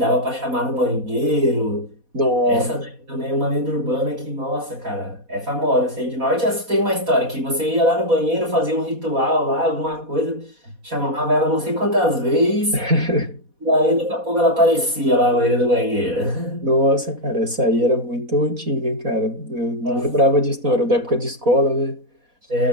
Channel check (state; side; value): late; left; 4.1 ms